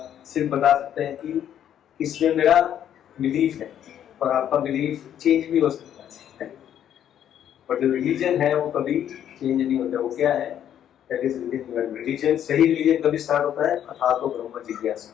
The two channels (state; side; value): quieter; right; 10.1 dB